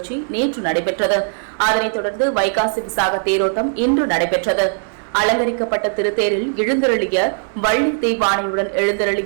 நேற்று நடைபெற்றது. அதனைத் தொடர்ந்து வைகாசி விசாக தேரோட்டம் இன்று நடைபெற்றது. அலங்கரிக்கப்பட்ட திருத்தேரில் எழுந்தருளிய வள்ளி தெய்வானையுடன்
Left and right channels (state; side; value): silent; left; digital silence